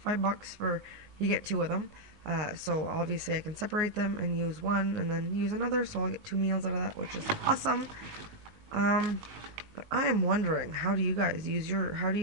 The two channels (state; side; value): late; left; 19 ms